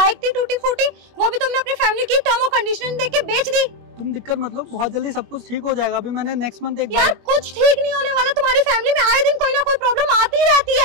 थी टूटी फूटी, वो भी तुमने अपनी फैमिली की टर्म और कंडीशन देख के बेच दी। तुम दिक्कत मतलब, बहुत जल्दी सब कुछ ठीक हो जाएगा। अभी मैंने नेक्स्ट मंथ एक यार कुछ ठीक नहीं होने वाला, तुम्हारी फैमिली में आए दिन कोई ना कोई प्रॉब्लम आती ही रहती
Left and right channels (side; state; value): left; late; 21 ms